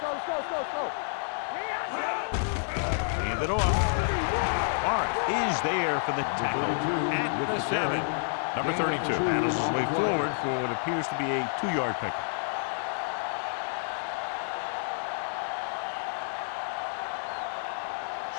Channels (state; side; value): silent; right; digital silence